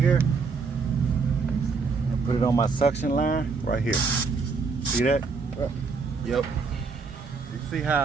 and put it on my suction line right here. See that? Yep. You see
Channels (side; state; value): left; quieter; 4.8 dB